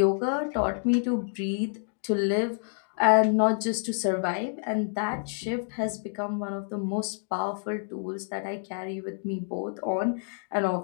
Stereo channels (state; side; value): silent; right; digital silence